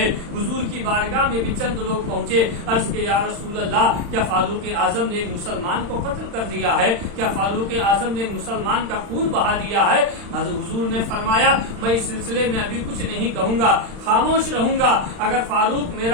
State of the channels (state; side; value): late; left; 35 ms